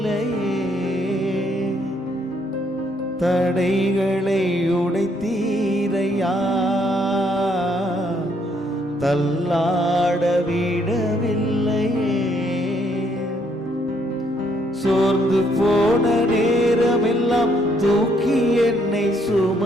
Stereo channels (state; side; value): normal; both; correlation 0.70